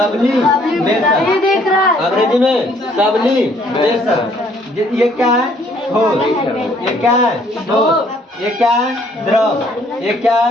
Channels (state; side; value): normal; both; correlation 0.63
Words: अंग्रेजी में सब्लिमेशन। ये क्या है? ठोस, ये क्या है? ठोस, ये क्या है? द्रव, ये क्या है?